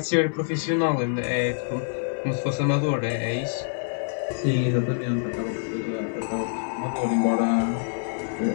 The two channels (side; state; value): right; silent; 61 dB below the other